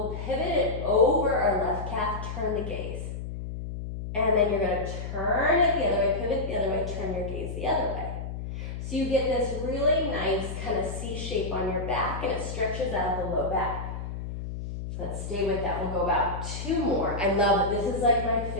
pivot it over our left calf, turn the gaze. And then you're going to turn it the other way, pivot the other way, turn your gaze the other way. So you get this really nice kind of C shape on your back and it stretches out the low back. Let's stay with that. We'll go about 2 more. I love it. This is like my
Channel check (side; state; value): left; noise; hum, 7 dB below the sound